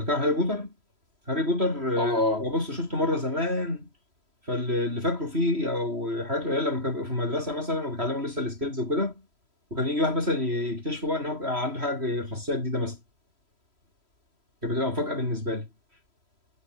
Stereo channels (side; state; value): left; late; 3.0 ms